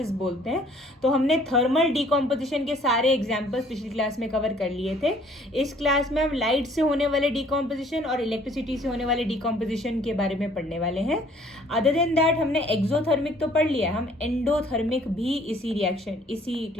बोलते हैं। तो हमने थर्मल डीकम्पोजिशन के सारे एग्जांपल्स पिछली क्लास में कवर कर लिए थे। इस क्लास में हम लाइट से होने वाले डीकम्पोजिशन और इलेक्ट्रिसिटी से होने वाले डीकम्पोजिशन के बारे में पढ़ने वाले हैं। अदर देन दैट हमने एक्सोथर्मिक तो पढ़ लिया, हम एंडोथर्मिक भी इसी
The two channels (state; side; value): normal; both; correlation 0.58